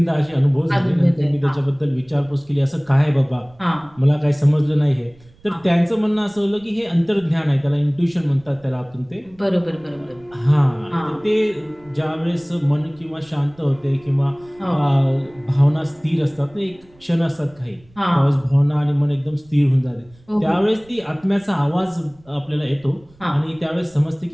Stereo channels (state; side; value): noise; right; rumble, 28 dB below the sound